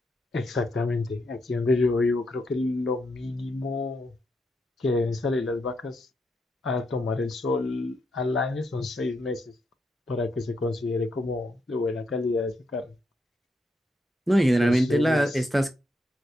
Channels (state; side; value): normal; both; correlation 0.80